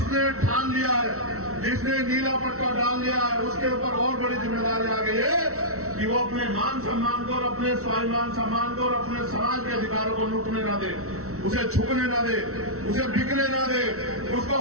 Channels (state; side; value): late; left; 0.64 ms